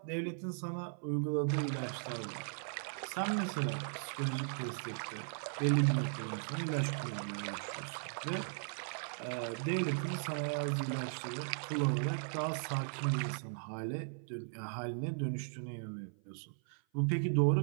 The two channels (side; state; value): left; silent; 53 dB below the other